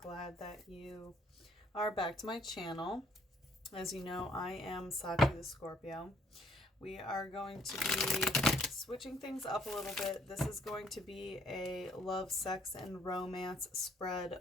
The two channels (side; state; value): both; normal; correlation 0.65